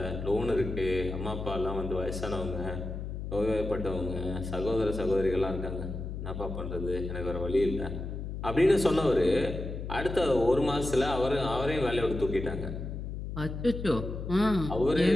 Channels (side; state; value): left; noise; hum, 6 dB below the sound